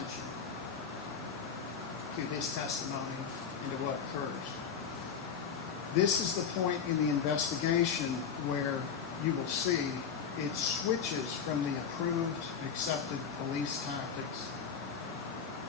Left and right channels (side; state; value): right; quieter; 6.8 dB